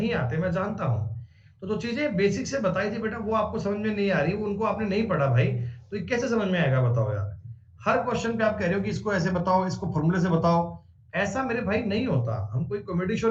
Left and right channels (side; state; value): both; identical; correlation 1.00